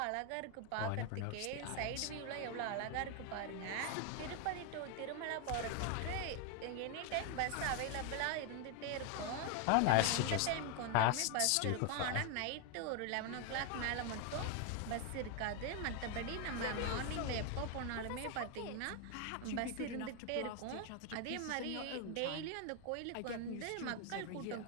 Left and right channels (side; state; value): both; different; correlation 0.01